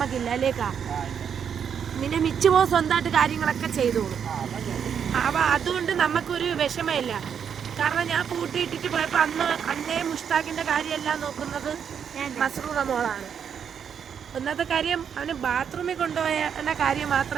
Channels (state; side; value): quieter; left; 7.7 dB